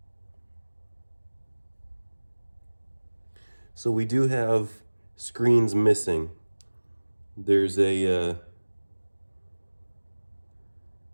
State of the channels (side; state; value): both; inverted; correlation -1.00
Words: So we do have screens missing. There's